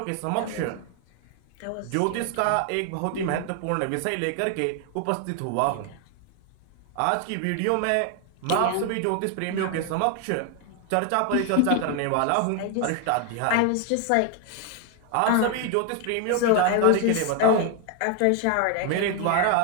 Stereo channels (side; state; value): both; different; correlation 0.01